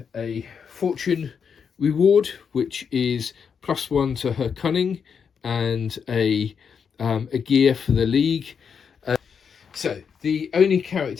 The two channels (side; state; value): right; quieter; 6.6 dB